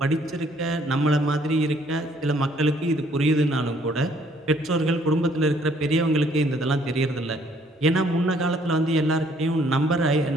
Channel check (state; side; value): normal; both; correlation 0.63